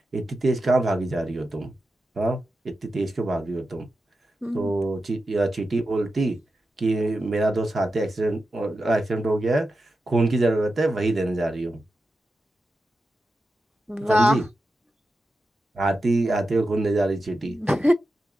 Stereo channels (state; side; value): normal; both; correlation 0.90